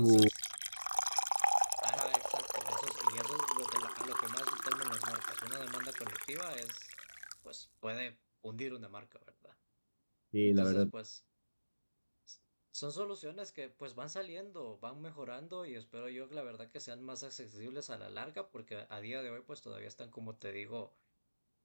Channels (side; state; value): both; inverted; correlation -1.00